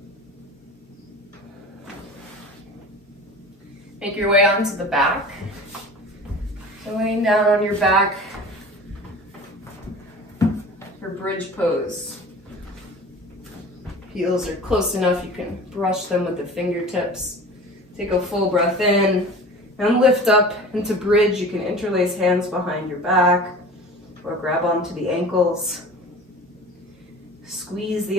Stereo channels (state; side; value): normal; both; correlation 0.39